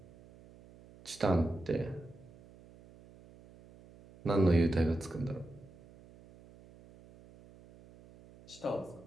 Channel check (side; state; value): right; noise; hum, 23 dB below the sound